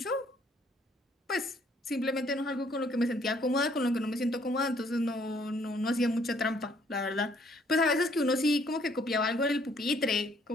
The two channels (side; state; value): both; normal; correlation 0.64